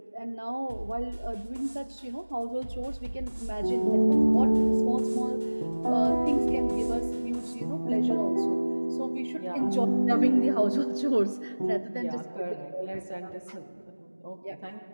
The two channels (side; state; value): both; inverted; correlation -1.00